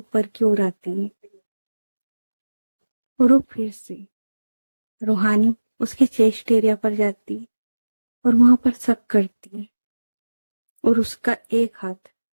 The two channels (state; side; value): inverted; both; correlation -1.00